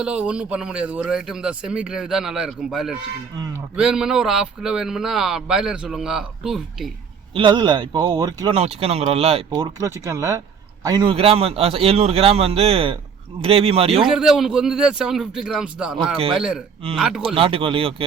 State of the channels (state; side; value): quieter; left; 6.4 dB